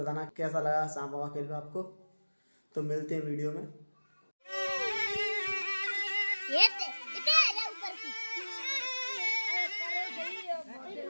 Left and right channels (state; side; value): inverted; both; correlation -1.00